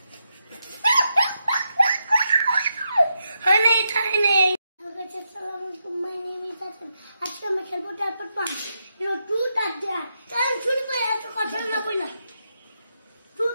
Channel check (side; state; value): both; inverted; correlation -0.84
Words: guys, assalamualaikum. My name is Hassan. আজকে আমি খেলবো তারপর পান। ট্রুথ আর ডেয়ার। চল শুরু করে এত কথা না বইলা।